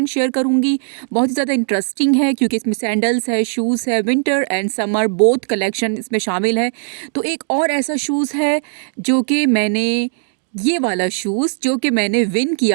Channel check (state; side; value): silent; left; digital silence